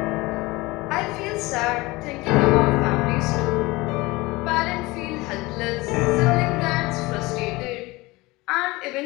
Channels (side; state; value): right; quieter; 21.9 dB